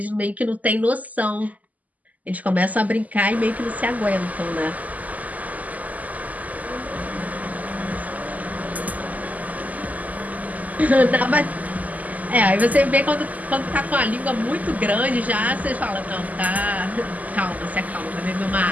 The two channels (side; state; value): left; late; 0.078 ms